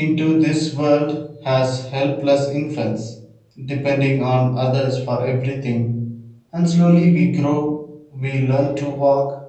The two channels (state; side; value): identical; both; correlation 1.00